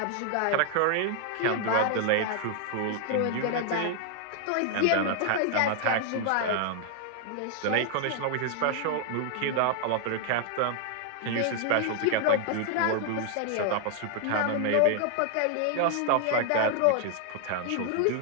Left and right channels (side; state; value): both; different; correlation 0.00